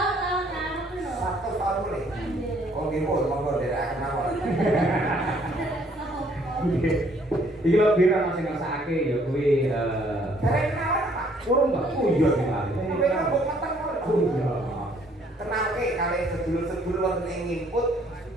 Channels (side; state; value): both; normal; correlation 0.63